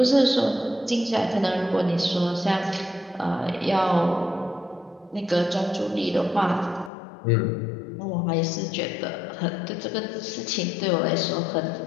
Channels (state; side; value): drops out; right; at 6.9 s